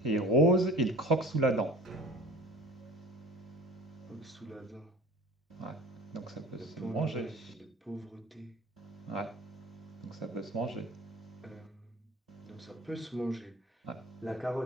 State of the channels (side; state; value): both; normal; correlation 0.40